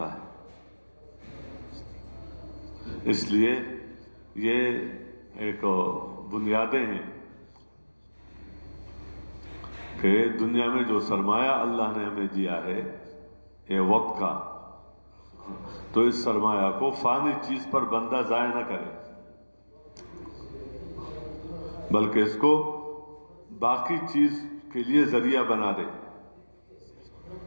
ہے. اس لیے یہ ایک بنیادیں ہیں کہ دنیا میں جو سرمایہ اللہ نے ہمیں دیا ہے یہ وقت کا، تو اس سرمایہ کو فانی چیز پر بندہ ضائع نہ کرے، بلکہ اس کو باقی چیز کے لیے ذریعہ بنا دے،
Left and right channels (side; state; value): both; inverted; correlation -1.00